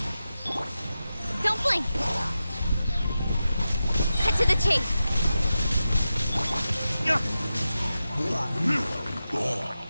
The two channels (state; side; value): inverted; both; correlation -0.91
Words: Don't blink. Cut to the chase.